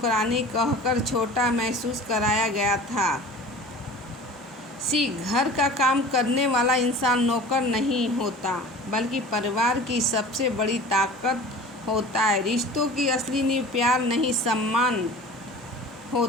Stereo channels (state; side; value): normal; both; correlation 0.40